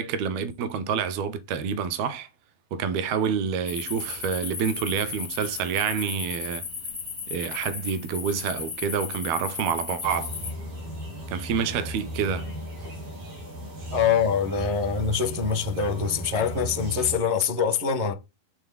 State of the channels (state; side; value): late; left; 11 ms